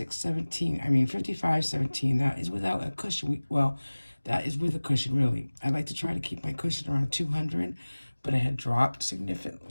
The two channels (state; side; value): inverted; both; correlation -1.00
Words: That is without a cushion. That is with a cushion, really. I like to try to keep my cushion around $200, but it had dropped